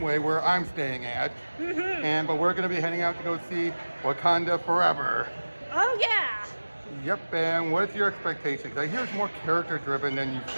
where I'm staying at, but we're going to be heading out to go see Wakanda Forever. Oh yeah. Yep, and what's your expectations? I hear it's more character-driven than you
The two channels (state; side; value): inverted; both; correlation -1.00